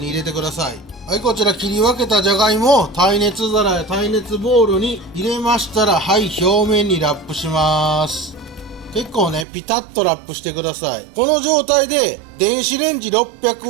入れてください。はい、こちら切り分けたじゃがいもを耐熱皿や耐熱ボウルに入れましたら、はい、表面にラップします。結構ね、ピタッとラップしてください。この状態で電子レンジ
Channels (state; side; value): drops out; left; at 9.5 s